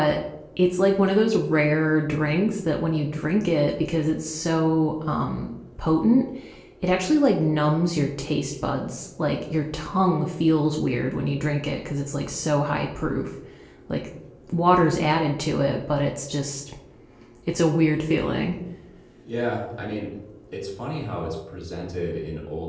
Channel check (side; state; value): both; identical; correlation 1.00